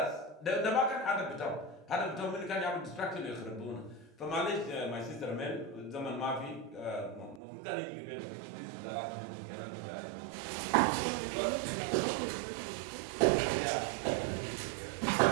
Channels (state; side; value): drops out; left; at 7.4 s